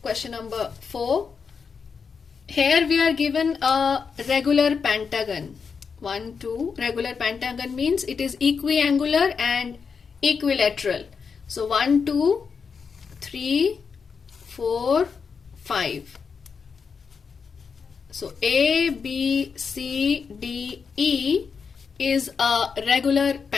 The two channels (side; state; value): right; quieter; 5.8 dB